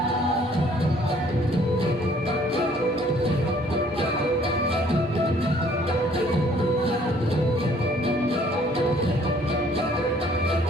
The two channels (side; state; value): both; normal; correlation 0.59